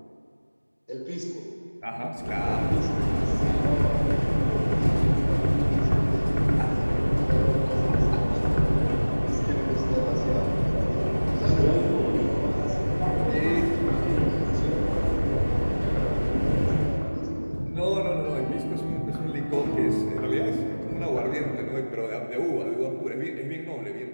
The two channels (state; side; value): inverted; both; correlation -1.00